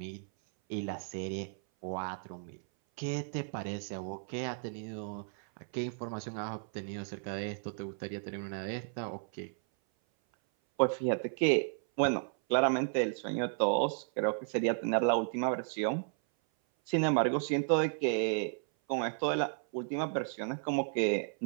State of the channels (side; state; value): left; silent; 55 dB below the other